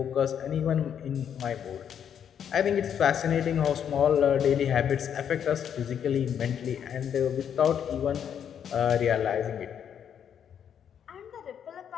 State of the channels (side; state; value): right; quieter; 8.6 dB